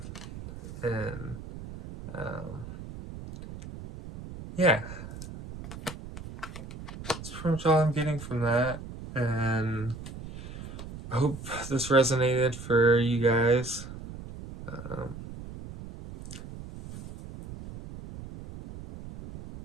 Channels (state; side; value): noise; right; rumble, 12 dB below the sound